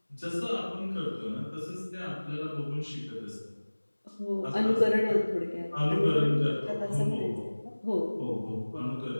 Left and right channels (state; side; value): inverted; both; correlation -1.00